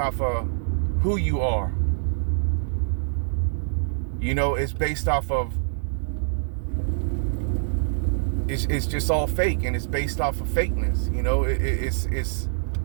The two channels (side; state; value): left; silent; 62 dB below the other